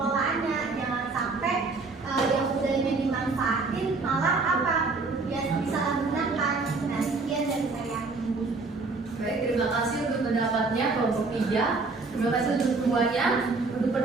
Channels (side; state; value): left; quieter; 3.9 dB